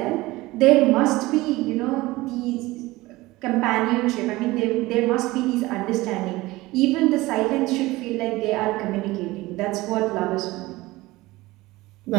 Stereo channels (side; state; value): left; quieter; 19.6 dB